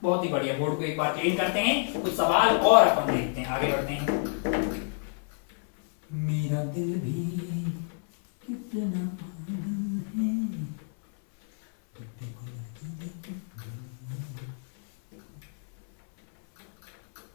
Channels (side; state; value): right; silent; 59 dB below the other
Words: बहुत ही बढ़िया। बोर्ड को एक बार क्लीन करते हैं, कुछ सवाल और अपन देखते हैं, आगे बढ़ते हैं। मेरा दिल भी कितना पागल है।